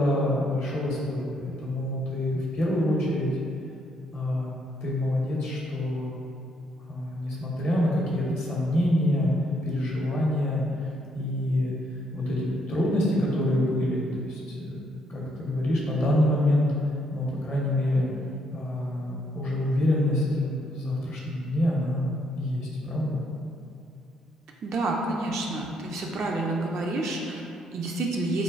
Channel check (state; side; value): normal; both; correlation 0.72